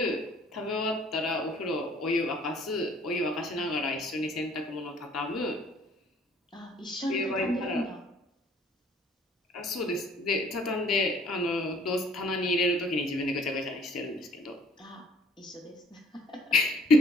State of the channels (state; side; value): normal; both; correlation 0.57